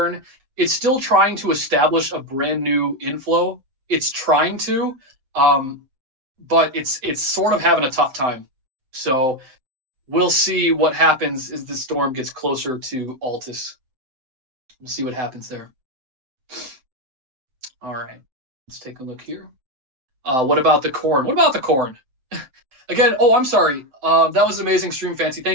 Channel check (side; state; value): left; late; 7.8 ms